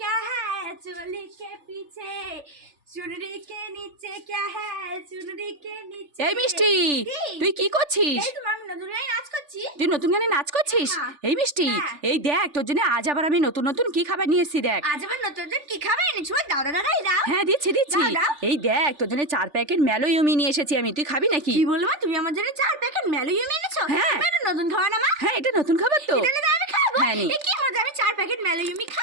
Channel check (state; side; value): late; left; 3.4 ms